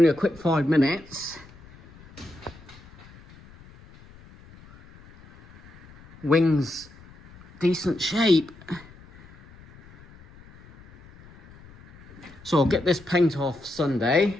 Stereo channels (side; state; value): left; noise; rumble, 23 dB below the sound